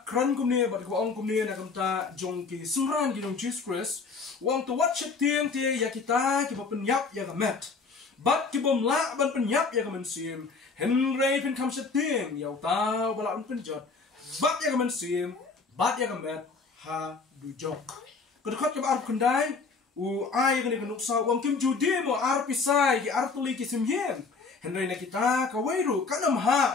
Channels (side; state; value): right; quieter; 4.5 dB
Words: kran kumni bat kaba ong kumni na kamta jong ki sumran ki jong Jesus Christ wang to watch tiang tie ya kita ki ba penyap ya gamet bat ki bom la ban penyap ya gamen sim henry pen kam tiang ya ta bala un penjot bat ya gamen sim bat ya gamet ha du jok kedekot kaba arbu kendai u ai gani kanuksa wang kim judi mo ar pisai ki ar tuli ki sim yen henry na kita ka wairu kanam